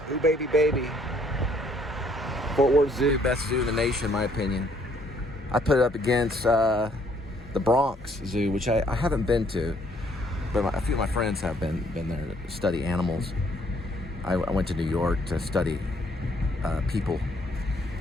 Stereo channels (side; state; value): both; normal; correlation 0.65